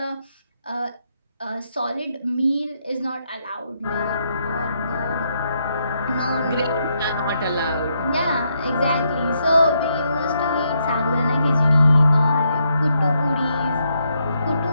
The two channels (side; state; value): both; inverted; correlation -0.77